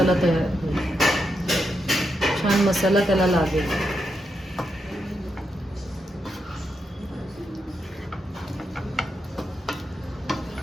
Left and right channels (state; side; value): normal; both; correlation 0.84